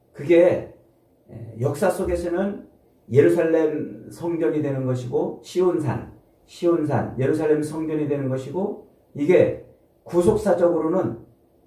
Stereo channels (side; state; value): both; identical; correlation 1.00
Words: 그게 역사 속에서는 예루살렘 성전이 되는 것이고 시온산, 예루살렘 성전이 되는 것이고, 이게 구속사적으로는